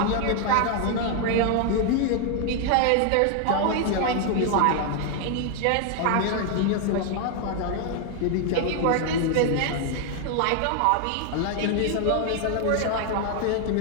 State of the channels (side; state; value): both; different; correlation 0.00